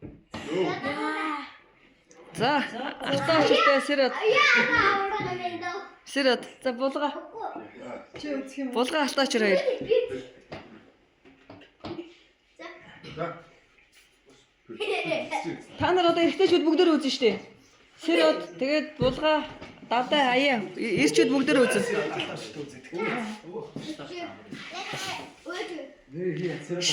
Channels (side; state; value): both; identical; correlation 1.00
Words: Юу. За, алтаачтай сэрэд. Сэрэд. За булга. Чи үзэх юм. Булга алтаачир хоёр. За. Та нар одоо эргэжтэйчүүд бүгдөө үзэн штэ. Сэрэд тэгээд булга давтай хаяа эрчүүд бүгдөө үзэн.